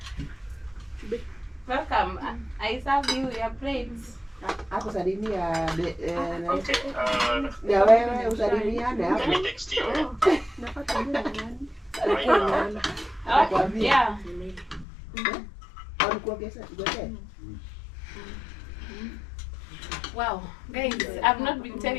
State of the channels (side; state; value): right; drops out; at 14.9 s